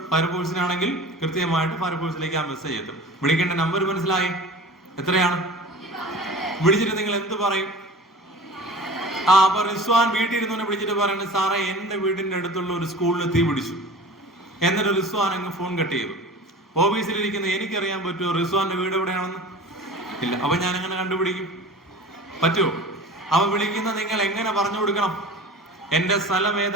ഫയർഫോഴ്സിനാണെങ്കിൽ കൃത്യമായിട്ട് ഫയർഫോഴ്സിലേക്ക് ആ മെസ്സേജ് എത്തും. വിളിക്കേണ്ട നമ്പർ മനസ്സിലായി? എത്രയാണ്? വിളിച്ചിട്ട് നിങ്ങൾ എന്ത് പറയും? അപ്പൊ റിസ്വാൻ വീട്ടിൽ ഇരുന്നവനെ വിളിച്ചിട്ട് പറയുന്നത്, സാറേ എന്റെ വീടിന്റെ അടുത്തുള്ള ഒരു സ്കൂളിൽ തീ പിടിച്ചു. എന്നിട്ട് റിസ്വാൻ അങ്ങ് ഫോൺ കട്ട് ചെയ്തു. ഓഫീസിലിരിക്കുന്ന എനിക്കറിയാൻ പറ്റുമോ റിസ്വാന്റെ വീട് എവിടെയാണെന്ന്? ഇല്ല. അപ്പൊ ഞാൻ എങ്ങനെ കണ്ടുപിടിക്കും? പറ്റുമോ? അവ വിളിക്കുന്ന നിങ്ങൾ എങ്ങനെ പറഞ്ഞു കൊടുക്കണം? എന്റെ സ്ഥലം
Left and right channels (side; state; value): both; normal; correlation 0.38